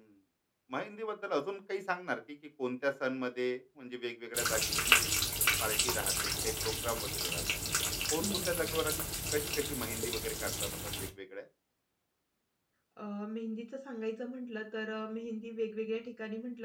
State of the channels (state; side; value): identical; both; correlation 1.00